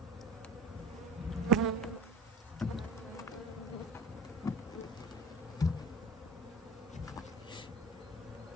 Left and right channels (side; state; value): both; normal; correlation 0.41